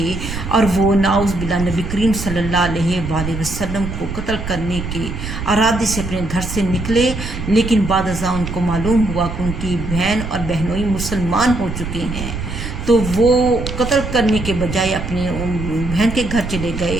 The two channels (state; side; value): noise; right; rumble, 7 dB below the sound